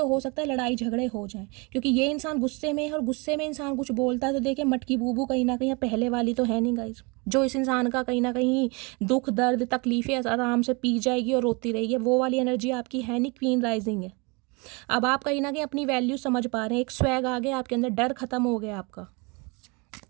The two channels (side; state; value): left; quieter; 29.4 dB